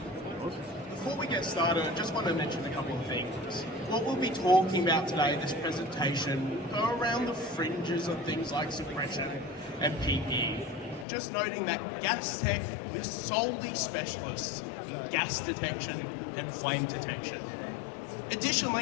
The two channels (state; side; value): drops out; right; at 11.1 s